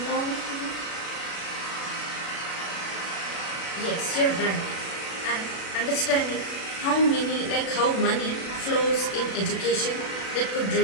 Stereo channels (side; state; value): right; late; 36 ms